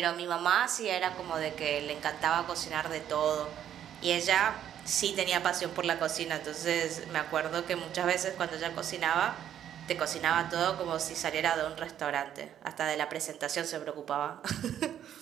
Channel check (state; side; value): quieter; left; 10.2 dB